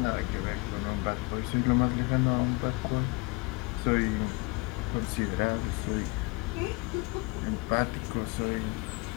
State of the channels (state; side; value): quieter; right; 26.5 dB